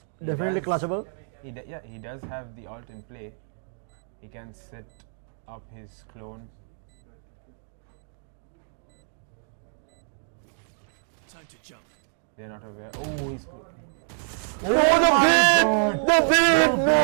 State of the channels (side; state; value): left; silent; digital silence